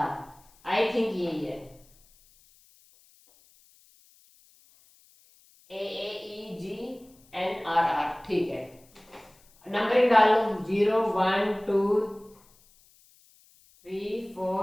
आई थिंक यही है। ई जी एन आर आर, ठीक है। नंबरिंग डाल लो, 0 1 2 3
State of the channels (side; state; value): left; noise; hiss, 30 dB below the sound